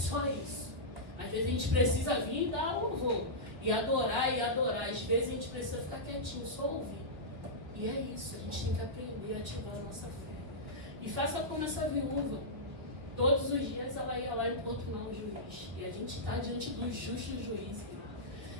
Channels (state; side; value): late; left; 2.8 ms